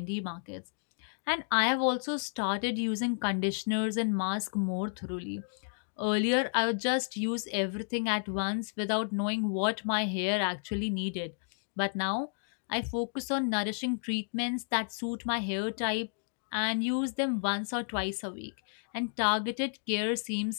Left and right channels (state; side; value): silent; right; digital silence